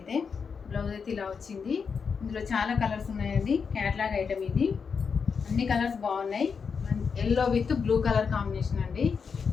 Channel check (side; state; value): right; quieter; 5.9 dB